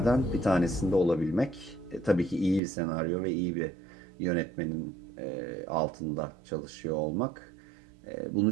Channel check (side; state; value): left; drops out; at 2.6 s